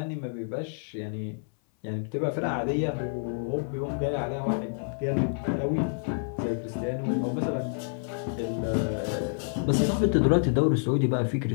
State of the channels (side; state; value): right; silent; 59 dB below the other